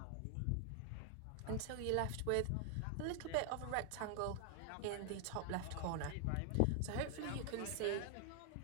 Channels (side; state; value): both; different; correlation 0.00